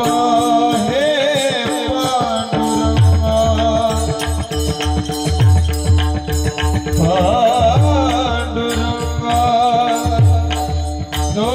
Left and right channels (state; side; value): identical; both; correlation 1.00